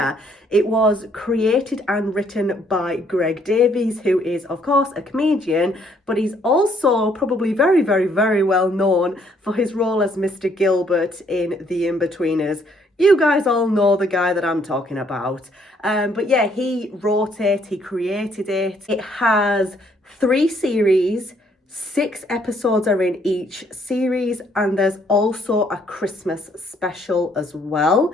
It was created and written by Greg Davies, who is of course a comedian, but he's also probably very well known for his role as Mr. Gilbert in The In-Betweeners. You guys all know the guy that I'm talking about. But yeah, he wrote it, he created it. It has 3 series, 6 episodes are in each series, and there's also a Christmas special as well.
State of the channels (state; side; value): normal; both; correlation 0.67